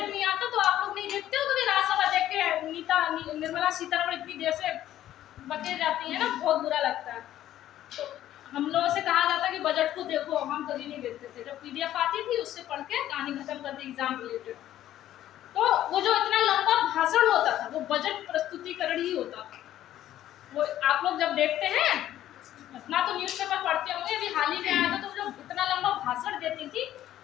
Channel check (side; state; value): right; quieter; 12.7 dB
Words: नहीं आता तो आप लोग नहीं देखते हो कभी राज्यसभा देख के निर्मला सीतारमण इतनी देर से बके जाती है ना, बहुत बुरा लगता है। तो हम लोगों से कहा जाता कि बजट को देखो, हम कभी नहीं देखते थे। जब पीडीएफ आती थी उससे पढ़ के कहानी खत्म कर दी एग्जाम रिलेटेड। तो वो जो इतना लंबा भाषण होता था वो बजट प्रस्तुतिकरण ही होता था। वो आप लोग जब देखते हैं, इतना तो न्यूज़पेपर पढ़ते होंगे, अभी हाल ही में आया था, तो जो इतना लंबा भाषण देती थी